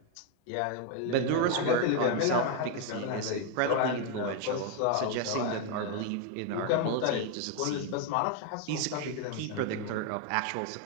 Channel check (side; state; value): both; different; correlation 0.01